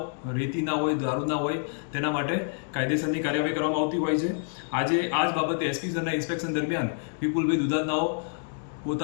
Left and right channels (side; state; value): right; silent; 60 dB below the other